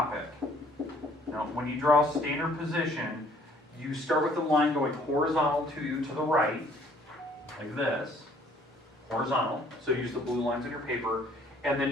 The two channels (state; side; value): normal; both; correlation 0.59